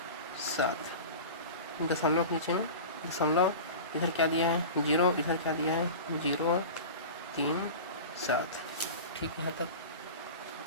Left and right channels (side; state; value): both; inverted; correlation -0.32